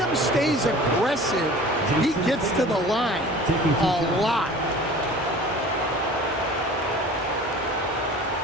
stays aggressive, he gets to the line a lot.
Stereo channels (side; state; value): both; normal; correlation 0.43